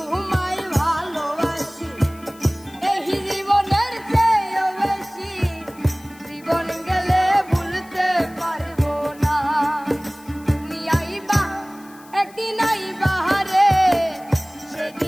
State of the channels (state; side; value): noise; left; hiss, 24 dB below the sound